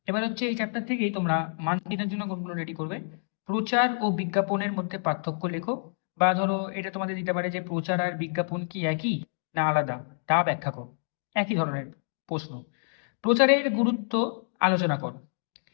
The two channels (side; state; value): right; silent; digital silence